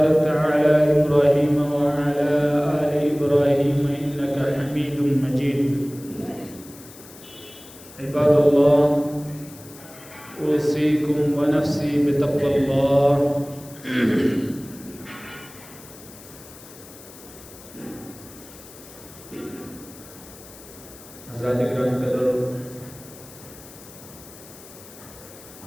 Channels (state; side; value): noise; left; hiss, 19 dB below the sound